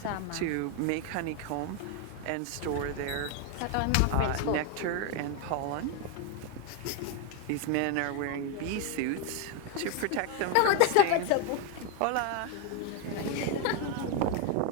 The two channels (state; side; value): different; both; correlation 0.01